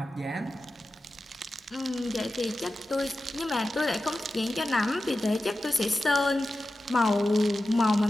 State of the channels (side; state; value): both; normal; correlation 0.93